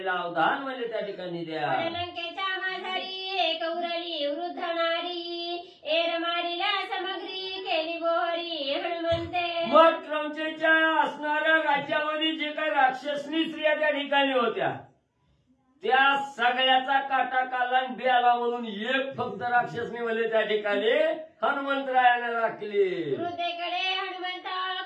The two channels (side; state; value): both; identical; correlation 1.00